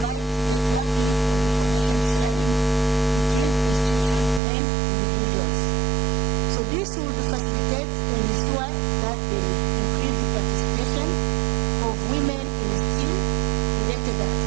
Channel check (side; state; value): left; drops out; at 4.4 s